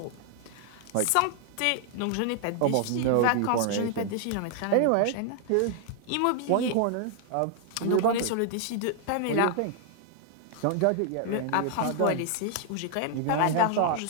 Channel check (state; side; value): different; both; correlation 0.00